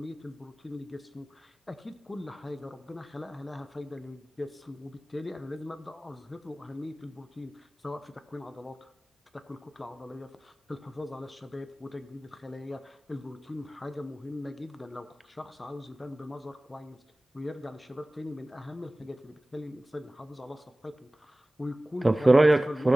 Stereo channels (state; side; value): normal; both; correlation 0.98